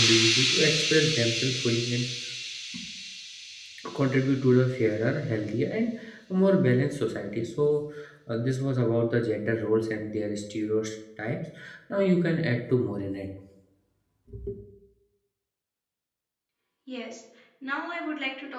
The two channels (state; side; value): identical; both; correlation 1.00